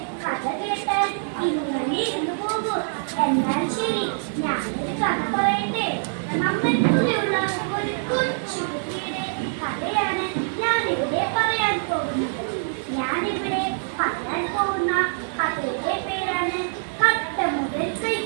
കഥ കേട്ടാൽ ഇങ്ങനെ ഇരുന്നു പോകും. എന്നാൽ ശരി, ഞാനൊരു കഥ പറയട്ടെ. നമ്മൾക്കുള്ള ഒരു കൊച്ചു കുട്ടിയുടെ കഥയാണ് ഞാനിവിടെ പറയാൻ പോകുന്നത്. ഞാനിവിടെ പറയാൻ പോകുന്ന കഥയുടെ പേരാണ് കട്ട മുതൽ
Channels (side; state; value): left; silent; 62 dB below the other